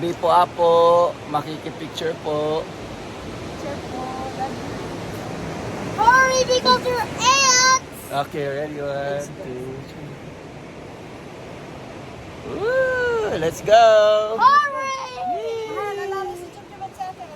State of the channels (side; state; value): both; identical; correlation 1.00